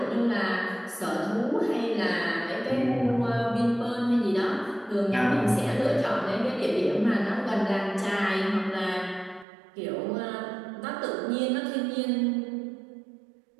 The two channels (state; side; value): drops out; left; at 9.5 s